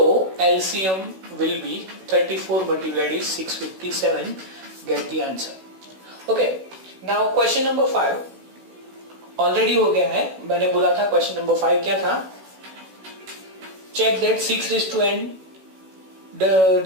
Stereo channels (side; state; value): left; late; 16 ms